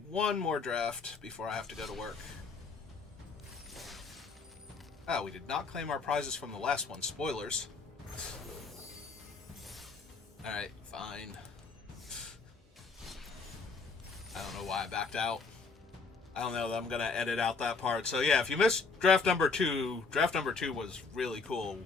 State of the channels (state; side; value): quieter; right; 4.5 dB